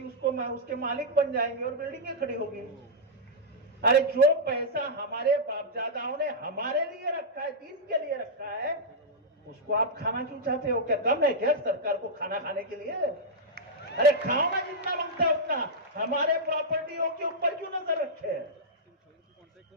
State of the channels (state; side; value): normal; both; correlation -0.09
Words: उसके मालिक बन जाएंगे और बिल्डिंगें खड़ी होगी। अरे जो पैसा हमारे बापदादाओं ने हमारे लिए रखा है, दीन के लिए रखा है, उसको आप खाना क्यों चाहते हो? क्या कम है क्या सरकार को खाना खाने के लिए? अरे खाओ ना जितना मांगता है उतना, हमारे प्रॉपर्टियों के ऊपर क्यों नजर रखे?